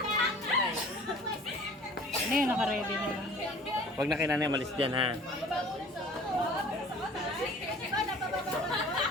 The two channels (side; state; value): both; normal; correlation 0.48